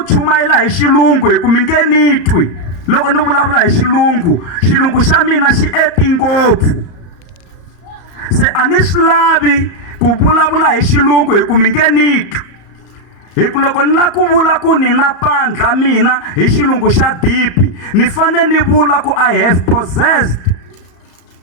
chumayela hi xilungu hi ku mi nge ni twi loko ni vulavula hi xilungu xa mina xi eti ngopfu. Se a ni swi lavi ku vulavula hi xilungu hi ku mi nge ni twi. Hi ku loko ni la ku vula ku ni na pandla mina hi xilungu xa dipi, ni fane ni vula ku I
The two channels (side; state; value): right; late; 34 ms